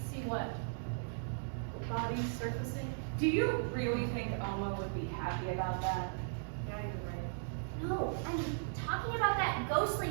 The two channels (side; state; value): left; silent; digital silence